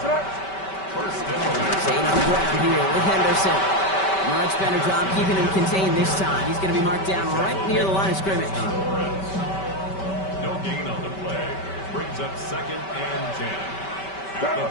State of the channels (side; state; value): right; late; 5.2 ms